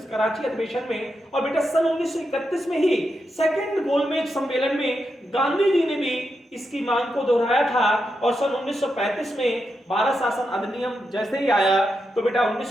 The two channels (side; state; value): both; normal; correlation 0.86